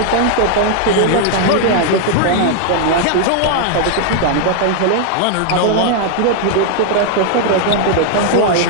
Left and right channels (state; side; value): different; both; correlation 0.00